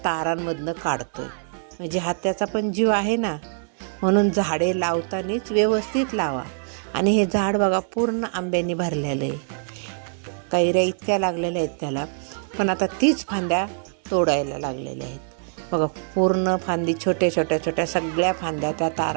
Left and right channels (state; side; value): silent; left; 63 dB below the other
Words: तारांमधनं काढतोय. म्हणजे हा त्याचा पण जीव आहे ना. म्हणून झाडे लावतानाच व्यवस्थित लावा. आणि हे झाड बघा पूर्ण आंब्याने भरलेलं आहे, कैऱ्या इतक्या लागलेल्या आहेत त्याला, पण आता तीच फांद्या तोडायला लागलेल्या आहेत. बघा पूर्ण फांदी छोट्या छोट्या छोट्या सगळ्या फांद्या त्या